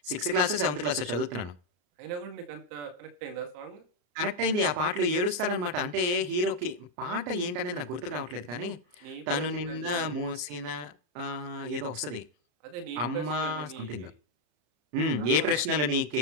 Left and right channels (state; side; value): late; left; 34 ms